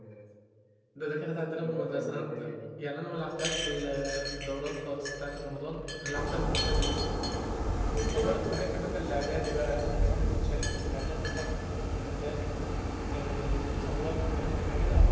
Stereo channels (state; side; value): identical; both; correlation 1.00